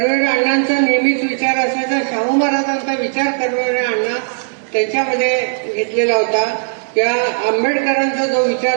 अण्णांचा नेहमीच विचार असायचा. शाहू महाराजांचा विचार कर्मवीर अण्णा त्यांच्यामध्ये घेतलेला होता. त्या आंबेडकरांचा जो विचार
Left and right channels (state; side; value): silent; left; digital silence